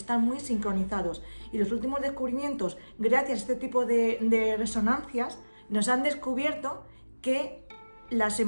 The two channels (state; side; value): inverted; both; correlation -1.00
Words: muy sincronizados. Y los últimos descubrimientos, gracias a este tipo de resonancias, nos han descubierto que las